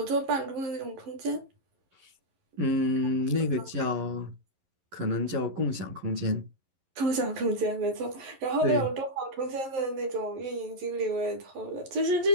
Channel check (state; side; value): late; left; 11 ms